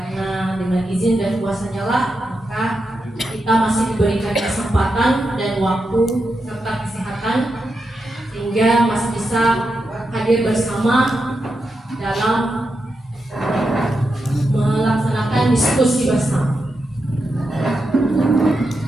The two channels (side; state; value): both; normal; correlation 0.87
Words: dengan izin dan kuasa-Nya lah maka kita masih diberikan kesempatan dan waktu serta kesehatan sehingga masih bisa hadir bersama dalam melaksanakan diskusi bersama.